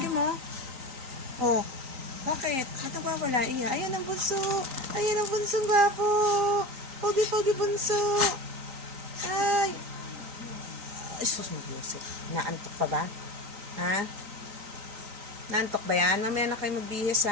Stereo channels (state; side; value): late; left; 3.9 ms